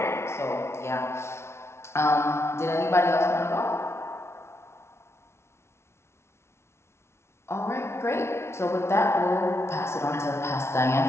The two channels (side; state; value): right; late; 0.13 ms